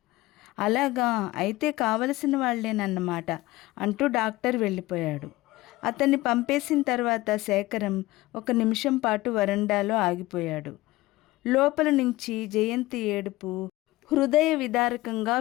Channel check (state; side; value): quieter; right; 18.8 dB